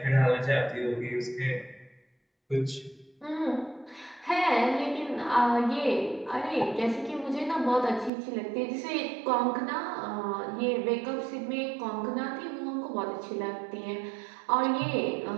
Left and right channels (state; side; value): drops out; left; at 8.1 s